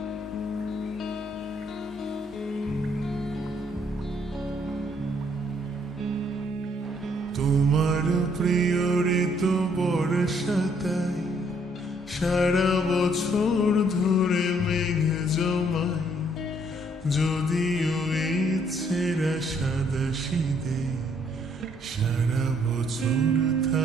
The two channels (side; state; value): both; normal; correlation 0.67